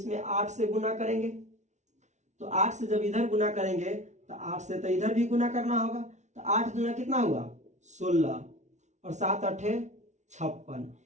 8 से गुना करेंगे। तो 8 से जब इधर गुना करेंगे तो 8 से तो इधर भी गुना करना होगा, तो 8 दूना कितना हुआ 16 और 7 × 8 = 56,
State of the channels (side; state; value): left; late; 0.34 ms